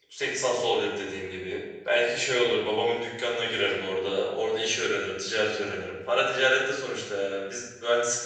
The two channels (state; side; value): identical; both; correlation 1.00